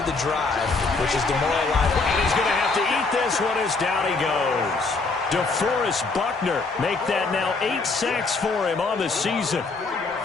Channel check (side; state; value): right; quieter; 3.9 dB